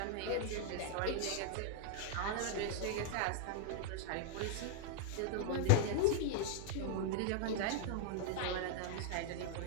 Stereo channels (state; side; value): different; both; correlation -0.01